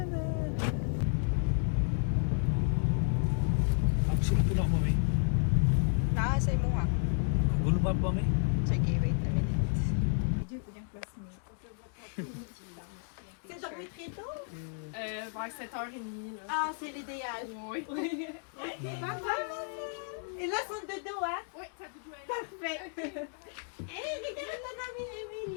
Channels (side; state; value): right; silent; 56 dB below the other